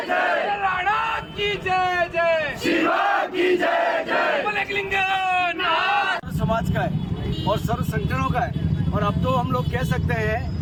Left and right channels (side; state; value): both; identical; correlation 1.00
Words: जय, राणा की जय जय, शिवा की जय जय। समाज का है और सर्व संगठनों का है और अब तो हम लोग कह सकते